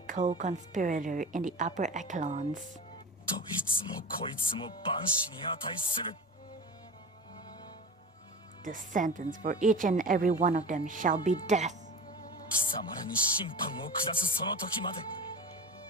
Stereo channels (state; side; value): normal; both; correlation 0.32